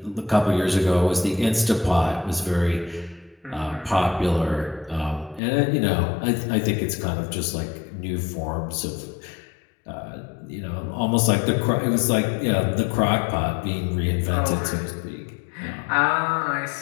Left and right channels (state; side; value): drops out; right; at 5.4 s